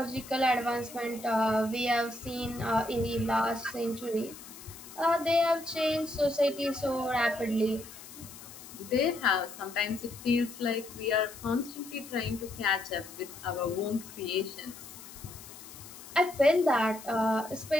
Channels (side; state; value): left; noise; hiss, 16 dB below the sound